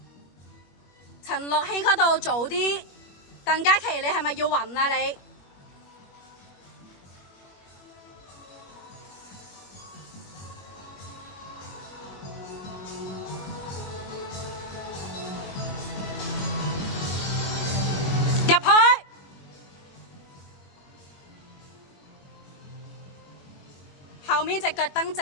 陳樂希嗰度早啲。鄧嘉琪，你係咪要暈啊你？入去。後面隻腳蹬直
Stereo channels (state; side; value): late; right; 21 ms